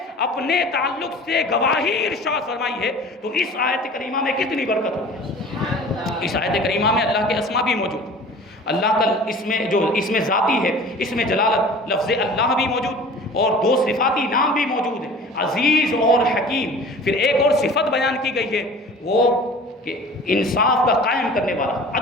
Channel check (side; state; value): both; normal; correlation 0.43